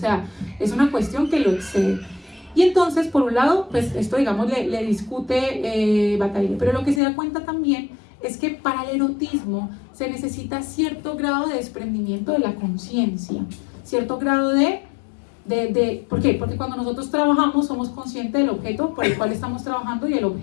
es una cuestión que lo excede. Y entonces, por un lado, pues esto, digamos, le discute Bataille. Pero lo que se da cuenta también es que para el erotismo se necesita cierto grado de desprendimiento de la conciencia, cierto grado ¿por qué? Porque cuando nosotros trabajamos somos conscientes del objeto por el cual estamos trabajando y el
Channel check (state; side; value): drops out; right; at 7.0 s